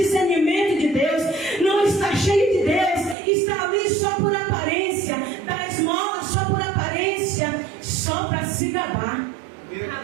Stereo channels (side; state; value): left; drops out; at 3.2 s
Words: de Deus, não estar cheio de Deus, estar ali só por aparência, dar esmola só por aparência, só para se gabar.